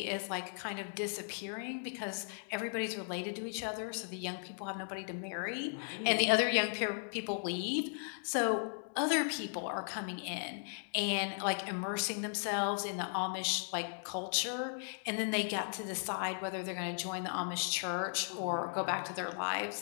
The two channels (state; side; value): silent; right; digital silence